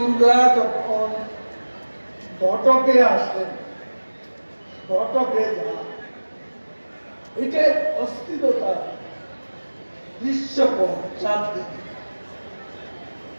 যখন ঘটকে আসেন, ঘটকে যান, এটা অস্থিরতা দৃশ্যপট চারদিকে।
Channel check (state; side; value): inverted; both; correlation -1.00